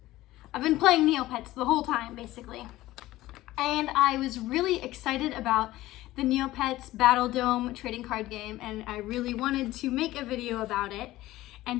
I've been playing Neopets the whole time, basically. And I was really excited about the Neopets Battledome trading card game, and I really wanted to make a video about it.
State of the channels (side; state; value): right; quieter; 16.6 dB